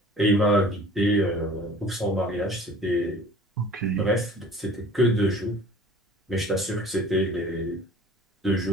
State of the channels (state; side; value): normal; both; correlation 0.47